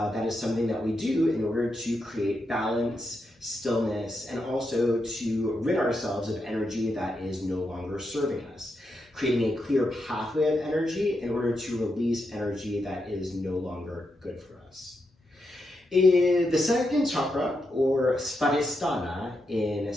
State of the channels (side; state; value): both; normal; correlation 0.84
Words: is something that we do in order to create balance, stillness, and also to rid ourselves of energy that is no longer serving us, creating a clear pathway of energy in order to release energy that is no longer good for us. The second chakra, or Svadhisthana in